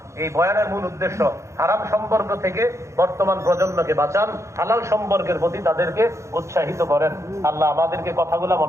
এই বয়ানের মূল উদ্দেশ্য হারাম সম্পর্ক থেকে বর্তমান প্রজন্মকে বাঁচান, হালাল সম্পর্কের প্রতি তাদেরকে উৎসাহিত করেন। আল্লাহ আমাদেরকে কথাগুলো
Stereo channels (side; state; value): left; late; 0.14 ms